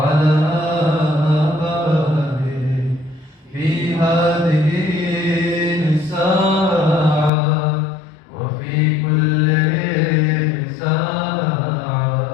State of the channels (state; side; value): drops out; right; at 7.3 s